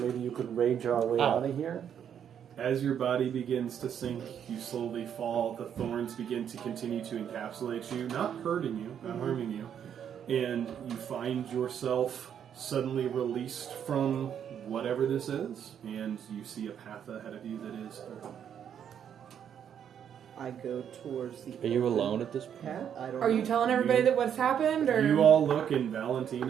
you could rage our way out of here. As your body begins to sink, you slowly fall. The thorns begin to continue to encapsulate you, not hurting you, not harming you. And you find yourself suddenly released from whatever this is, and you see a path ahead of you that is open. I go towards the. Are you alone at this point? Path? I don't Are know. you telling everybody that what's happened, or You all look, and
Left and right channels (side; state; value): left; quieter; 8.7 dB